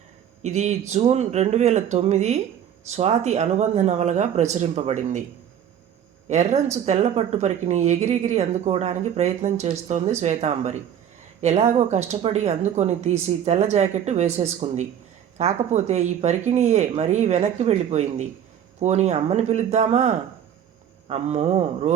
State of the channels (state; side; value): quieter; left; 9.4 dB